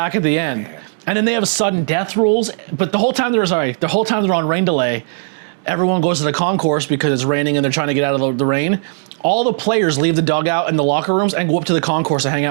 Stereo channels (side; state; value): left; silent; 67 dB below the other